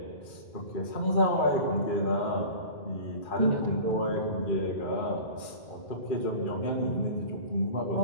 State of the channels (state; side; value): late; right; 2.4 ms